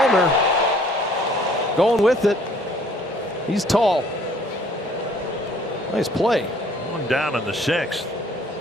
going with it. He's tall. Nice play. 1 down in the 6th.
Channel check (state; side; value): normal; both; correlation 0.58